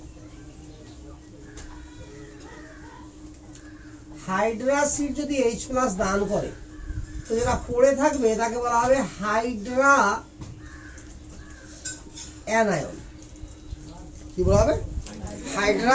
হাইড্রাসিড যদি H+ দান করে তো যেটা পড়ে থাকবে তাকে বলা হবে হাইড্রা অ্যানায়ন। কি বলা হবে?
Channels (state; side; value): identical; both; correlation 1.00